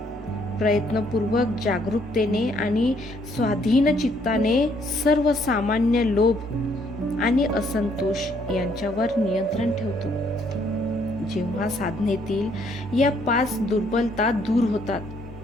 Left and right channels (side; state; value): both; normal; correlation 0.68